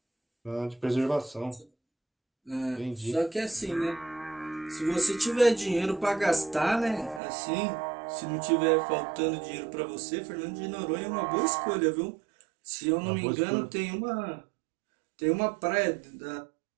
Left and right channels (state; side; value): drops out; left; at 7.2 s